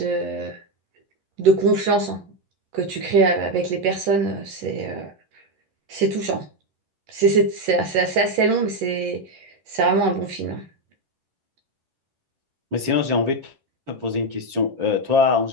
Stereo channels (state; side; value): late; left; 10 ms